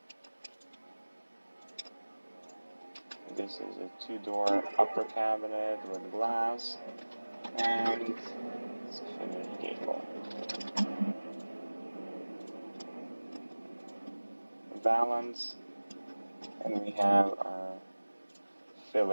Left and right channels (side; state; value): both; inverted; correlation -1.00